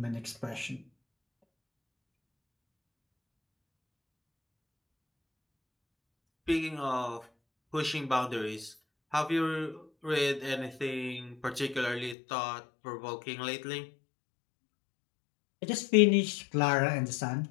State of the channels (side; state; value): right; drops out; at 12.2 s